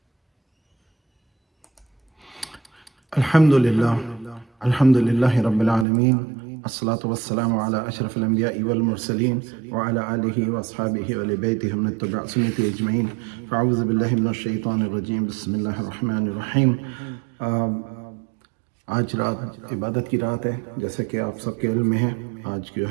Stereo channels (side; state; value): left; drops out; at 5.9 s